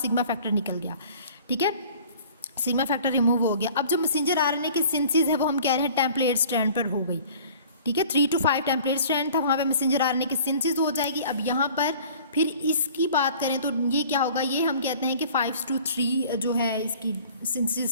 फैक्टर निकल गया। ठीक है, सिग्मा फैक्टर रिमूव हो गया। अब जो मैसेंजर आरएनए की सिंथेसिस है वो हम कह रहे हैं टेम्पलेट स्ट्रैंड पर हो गई। ठीक है, 3 to 5 टेम्पलेट स्ट्रैंड था, वहाँ पे मैसेंजर आरएनए की सिंथेसिस हो जाएगी। अब यहाँ पर फिर इसकी बात करें तो ये क्या होगा, ये हम कहते हैं कि 5 to 3 जो है इसकी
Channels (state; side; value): inverted; both; correlation -0.49